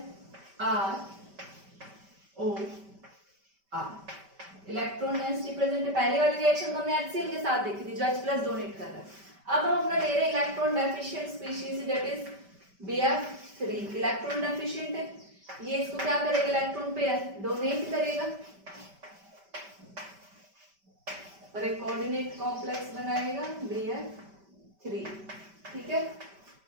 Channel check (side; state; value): left; late; 5.1 ms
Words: ROR. इलेक्ट्रॉन डेंसिटी प्रेजेंट है. पहली वाली रिएक्शन तो हमने HCl के साथ देखी थी जो H+ डोनेट कर रहा है. अब हम अपना ले रहे हैं electron deficient species, that is BF3. Electron deficient है, ये इसको क्या करेगा? इलेक्ट्रॉन पेयर डोनेट करेगा और एक कोऑर्डिनेट कॉम्प्लेक्स बनाएगा BF3. ठीक है,